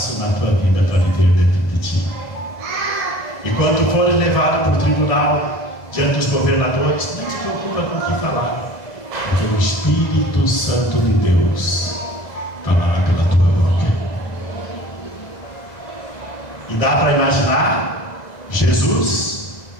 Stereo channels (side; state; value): right; late; 2.0 ms